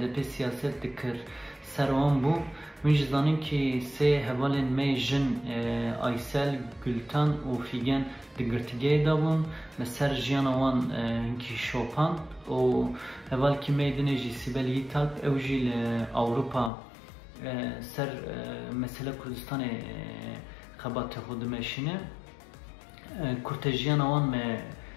siyaset dikir ser wan bû. Min jî zanim ki sê hevalên me jin Aysel, Gülten û Figen di girtîgehê de bûn me ser jiyana wan hinkî şopan û hevalkî me dinê jî Sibel Yiğitalp ew jî li Awropa ser mesele Kurdistanê xebatê xwe dimeşîne. Kurtejiyana wan me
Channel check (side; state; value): right; drops out; at 16.7 s